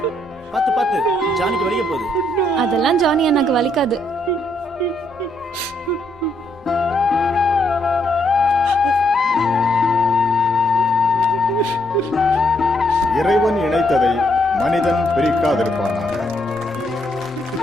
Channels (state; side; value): normal; both; correlation 0.74